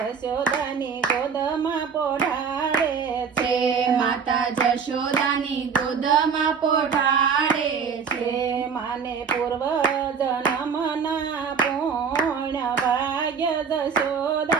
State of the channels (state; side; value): quieter; left; 6.3 dB